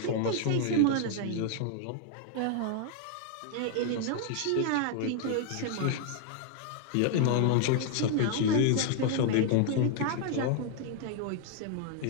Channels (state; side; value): different; both; correlation 0.00